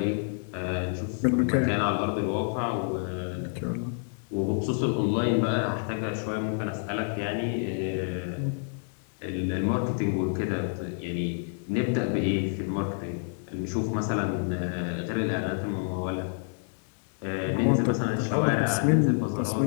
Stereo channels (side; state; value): right; silent; digital silence